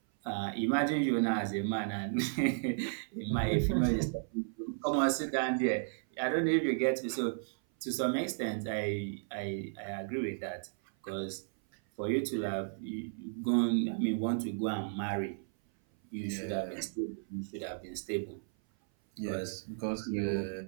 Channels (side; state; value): left; silent; 55 dB below the other